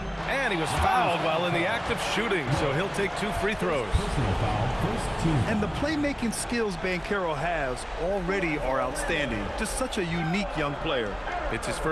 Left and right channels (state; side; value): identical; both; correlation 1.00